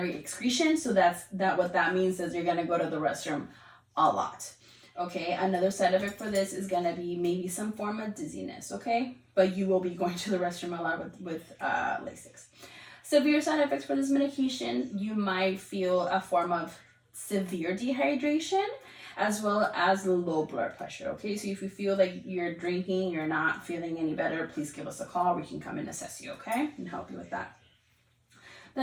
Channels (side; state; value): both; identical; correlation 1.00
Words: excretion. So what that means is you're going to go to the restroom a lot. Okay, another side effect for this is going to be maybe some form of dizziness, okay? But you will be going to the restroom a lot with Lasix. Severe side effects for this medication, you might feel a form of severe dehydration as well as low blood pressure, okay? So if you feel like you're drinking, you're not feeling any better, please give us a call. We can come and assess you, okay? And help you with that.